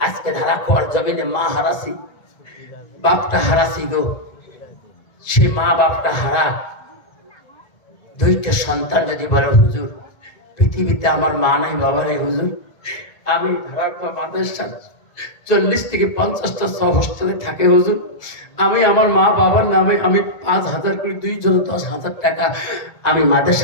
আজকে ধারা খোয়ার জমিনে মা হারাসি, বাপটা হারাসি গো। সে মা বাপটা হারা, দুইটা সন্তান যদি বলে হুজুর পৃথিবীতে আমার মা নাই বাবা নাই হুজুর, আমি ধারা খোয়া মাদ্রাসা 40 থেকে 50টা হোস্টেলে থাকে হুজুর, আমি আমার মা বাবার নামে আমি 5,000 করে 2 জন 10,000 টাকা আমি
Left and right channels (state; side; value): late; right; 1.9 ms